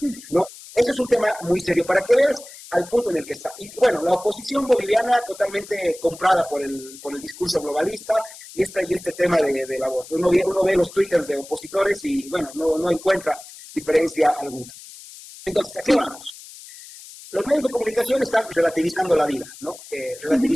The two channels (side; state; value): left; noise; hiss, 17 dB below the sound